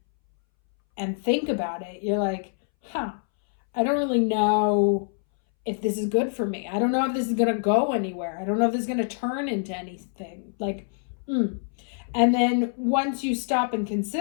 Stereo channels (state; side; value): silent; right; 61 dB below the other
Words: think about it, you're like, I don't really know if this is good for me. I don't know if this is going to go anywhere. I don't know if this is going to turn into anything. Like, And then once you stop and